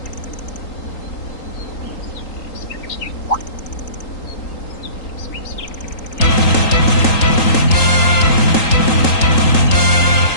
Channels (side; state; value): right; late; 3.8 ms